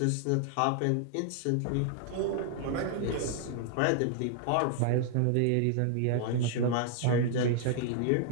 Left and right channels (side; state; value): both; different; correlation 0.00